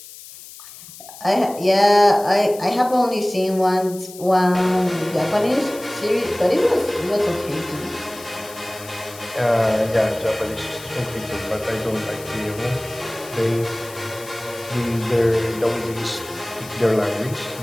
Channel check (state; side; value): noise; left; hiss, 17 dB below the sound